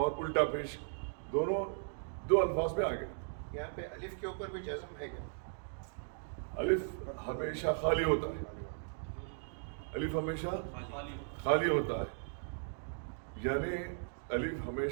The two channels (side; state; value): left; silent; digital silence